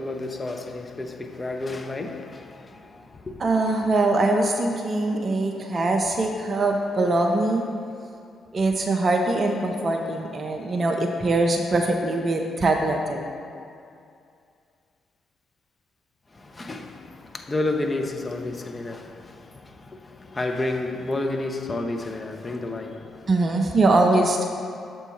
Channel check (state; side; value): normal; both; correlation 0.82